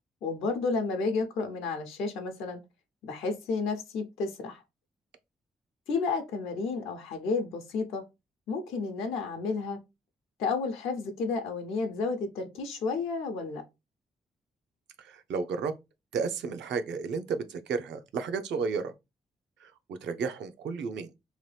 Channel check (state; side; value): normal; both; correlation 0.46